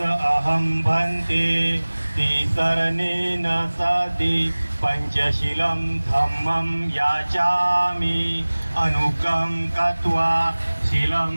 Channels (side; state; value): both; inverted; correlation -1.00